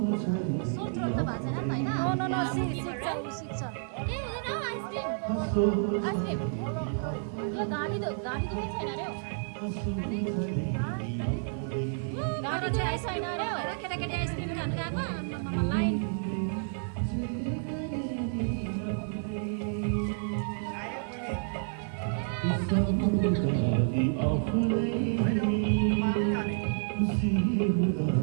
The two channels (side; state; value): left; silent; 58 dB below the other